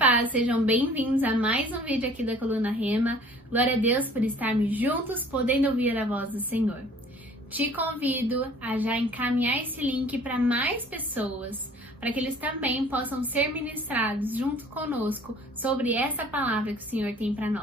sejam bem-vindos a mais um vídeo aqui da Coluna Rema. Glória a Deus por estarmos juntos, podendo ouvir a voz do Senhor. Te convido a já encaminhar esse link para mais pessoas, para que eles também possam ser ministrados junto conosco sobre essa palavra que o Senhor tem para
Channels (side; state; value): both; normal; correlation 0.52